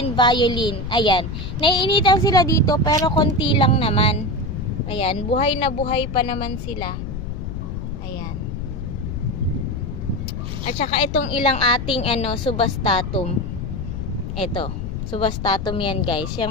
violin. Ayan, naiinitan sila dito pero konti lang naman. Ayan, buhay na buhay pa naman sila. Ayan. At saka itong ilang ating subastatum. Ito, subastatum yan guys.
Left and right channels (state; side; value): noise; left; rumble, 6 dB below the sound